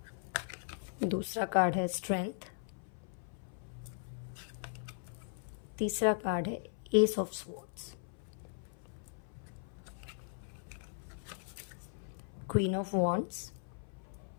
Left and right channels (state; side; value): silent; right; 52 dB below the other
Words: दूसरा कार्ड है स्ट्रेंथ। तीसरा कार्ड है S of swords. Queen of wands.